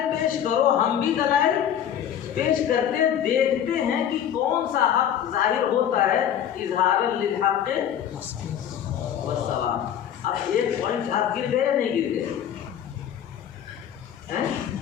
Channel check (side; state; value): right; quieter; 9.7 dB